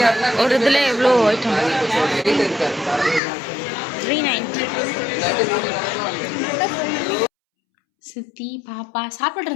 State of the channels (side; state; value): right; drops out; at 3.2 s